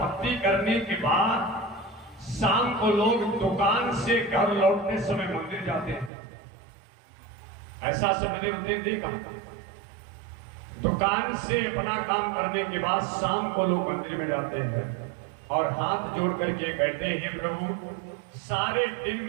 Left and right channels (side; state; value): left; drops out; at 6.1 s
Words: करने के बाद शाम को लोग दुकान से घर लौटने समय मंदिर जाते हैं। ऐसा से मैंने देखा, दुकान से अपना काम करने के बाद शाम को लोग मंदिर में जाते हैं और हाथ जोड़ करके कहते हैं, प्रभु सारे दिन